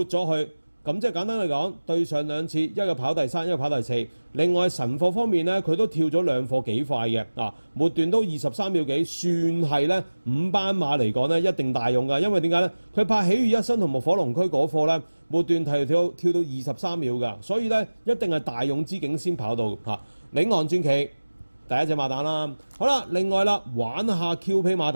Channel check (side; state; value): both; inverted; correlation -1.00